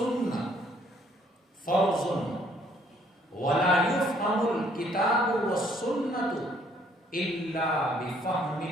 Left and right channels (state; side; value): normal; both; correlation 0.64